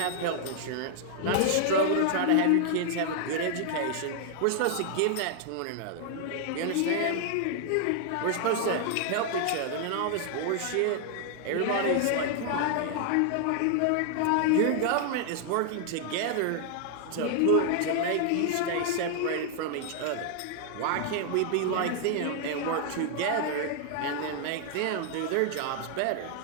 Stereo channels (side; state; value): both; different; correlation 0.00